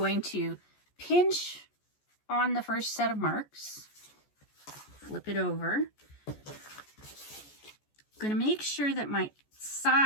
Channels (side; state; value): right; late; 14 ms